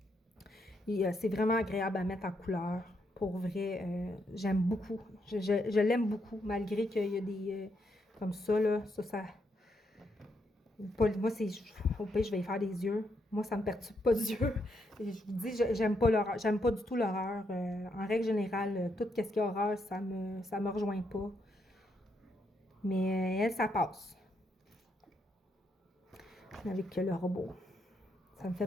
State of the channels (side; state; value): both; normal; correlation 0.78